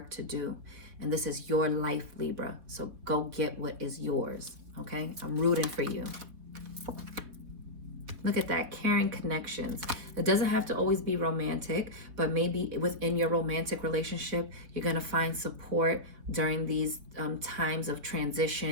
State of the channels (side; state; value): left; late; 4.0 ms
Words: to do. And this is your life, Libra. So go get what is yours, okay? I'm rooting for you. Look at that, caring connections. It doesn't have to always be romantic, but maybe within your romantic relationship, you're going to find support during these times of